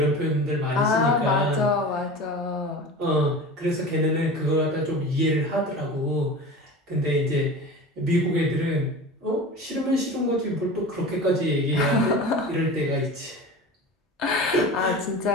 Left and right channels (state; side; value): normal; both; correlation 0.33